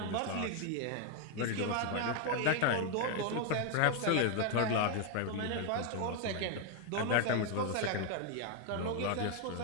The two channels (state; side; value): different; both; correlation 0.01